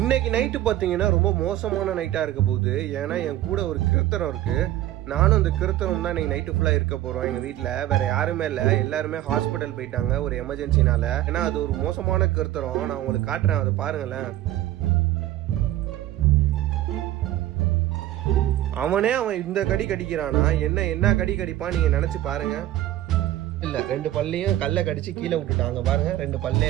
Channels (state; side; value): quieter; left; 14.1 dB